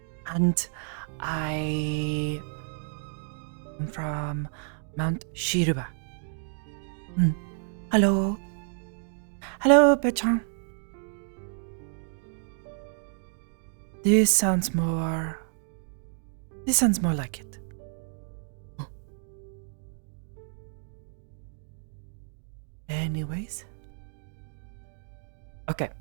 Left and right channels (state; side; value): silent; left; 57 dB below the other